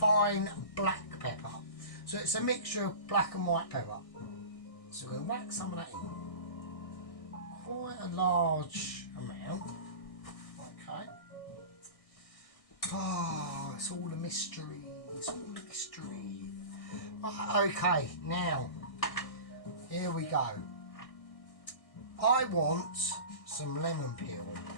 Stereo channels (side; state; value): right; late; 1.6 ms